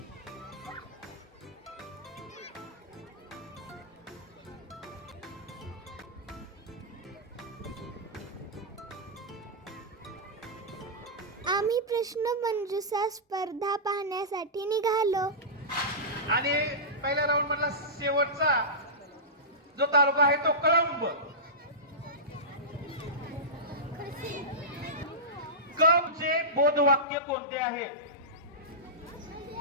आम्ही प्रश्नमंजुषा स्पर्धा पाहण्यासाठी निघालो. आणि पहिल्या राऊंड मधला शेवटचा जो तालुका आहे तो कळंब. कबचे बोधवाक्य कोणते आहे?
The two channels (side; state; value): both; normal; correlation -0.16